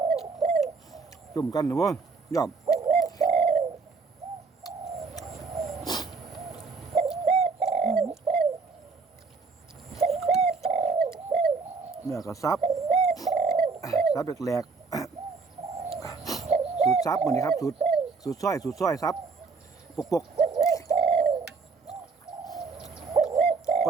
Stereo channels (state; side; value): quieter; left; 4.5 dB